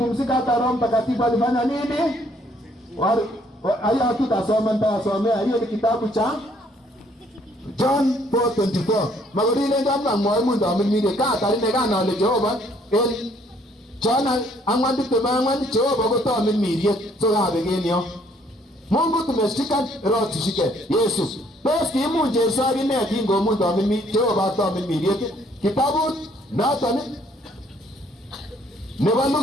hata Roho Mtakatifu alifanya nini? Aya tutasoma, nitasomea. Hiyo ni kitabu cha John 4:24. Magorile ndamna mwa ndo amimire ka tarine kana ole Jehova el Chana angwandi temangwandi Jehova gotoa mimirie so gabegenio. Mungu tumeshika roho tushike Yesu. Basi kimu Yesu agine kingo mundu amimi Jehova toa mimirie kitabu natani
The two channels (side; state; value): both; normal; correlation 0.64